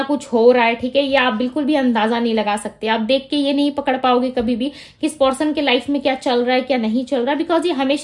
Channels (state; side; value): identical; both; correlation 1.00